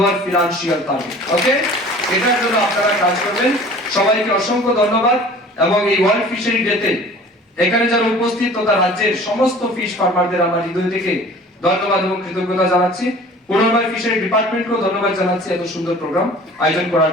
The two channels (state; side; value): normal; both; correlation 0.46